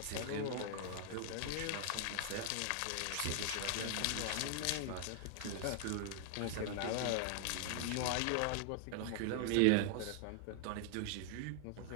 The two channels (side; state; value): both; different; correlation 0.00